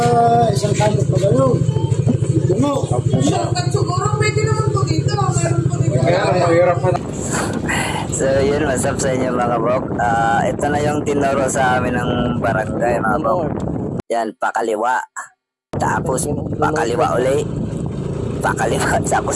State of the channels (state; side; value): identical; both; correlation 1.00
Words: isang kanto pa kayo. Ito mo. Siguro pwede naman po dito. Meron po dito. So yun, what's up sa inyo mga bok. Ito na yung tinuro sa amin ng barangay mga bok. Yan, pakaliwa. Tapos pakaliwa uli. pakaliwa